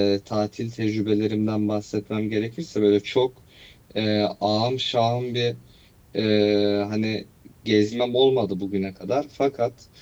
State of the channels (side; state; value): both; identical; correlation 1.00